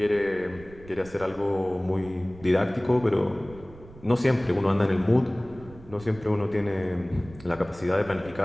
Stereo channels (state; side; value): noise; right; rumble, 19 dB below the sound